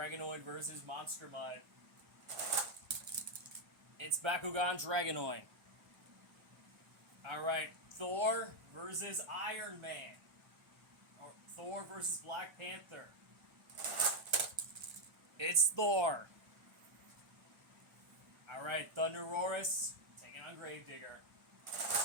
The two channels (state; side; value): late; left; 1.3 ms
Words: versus Monster Mutt. It's Bakugan Dragonoid. Alright, Thor versus Iron Man. Or Thor versus Black Panther. It's Thor. Alright, Thunder Roarus taking on Gravedigger.